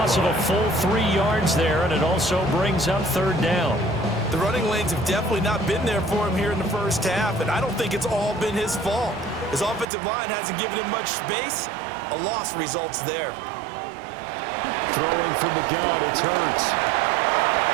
of a full 3 yards there, and it also brings up 3rd down. The running lanes have definitely not been there for him here in the first half, and I don't think it's all been his fault. His offensive line hasn't given him much space. A loss results there. Throwing from the gun, it's Hurts.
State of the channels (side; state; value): left; drops out; at 9.9 s